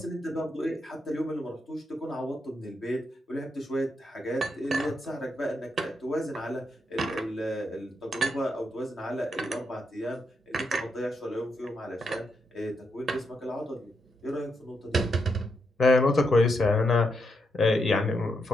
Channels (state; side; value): normal; both; correlation 0.82